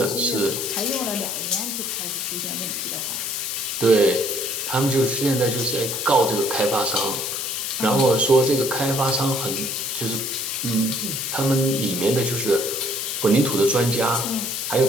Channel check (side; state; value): left; noise; hiss, 4 dB below the sound